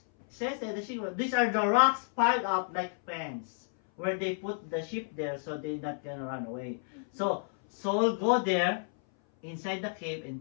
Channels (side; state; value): right; silent; 57 dB below the other